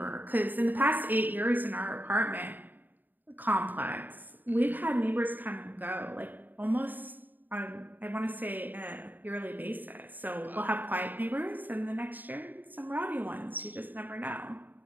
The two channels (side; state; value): left; late; 0.088 ms